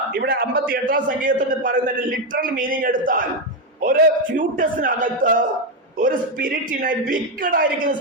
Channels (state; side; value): normal; both; correlation 0.06